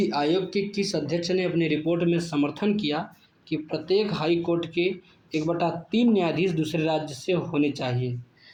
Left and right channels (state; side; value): identical; both; correlation 1.00